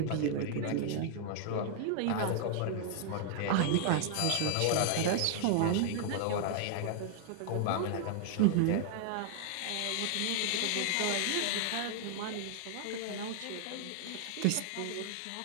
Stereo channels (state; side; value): different; both; correlation 0.00